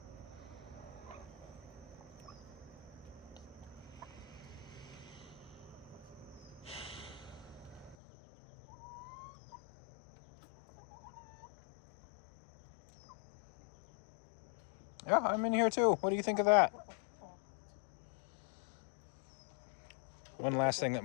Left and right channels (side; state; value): right; drops out; at 8.0 s